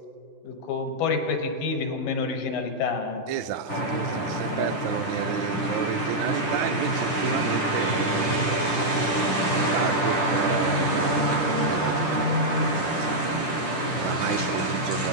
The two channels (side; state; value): right; late; 10 ms